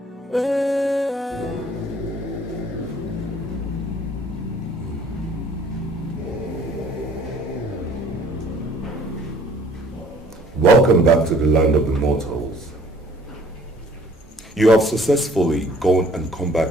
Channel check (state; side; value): normal; both; correlation 0.56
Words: Welcome back to the land of the mortals. You have successfully gone and come